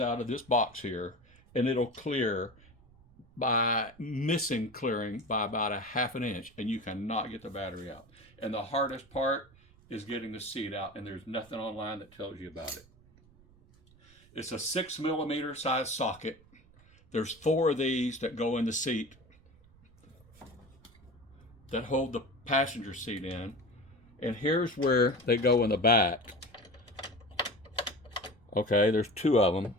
of this box here, and it'll clear by missing clearing by about a half an inch, and you cannot get the battery out. And the hardest part is getting the seat out, and there's nothing online that tells you about it. It's a 6mm size socket. There's 4 of these that go in the seat that hold the passenger seat in, and here's where they go in the back. Okay, there's 2 of them,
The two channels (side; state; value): right; noise; rumble, 27 dB below the sound